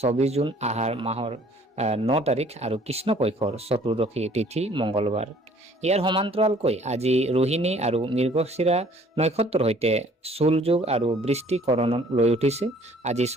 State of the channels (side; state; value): both; normal; correlation 0.56